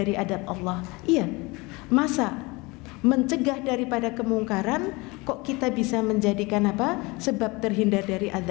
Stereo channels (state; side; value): quieter; right; 24.9 dB